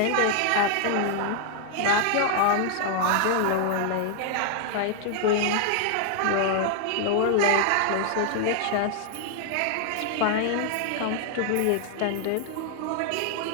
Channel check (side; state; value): both; different; correlation 0.00